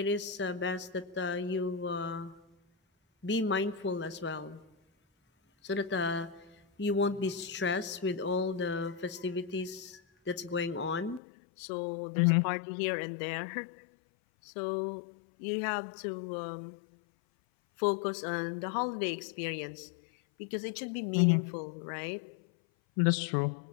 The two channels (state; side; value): drops out; right; at 11.2 s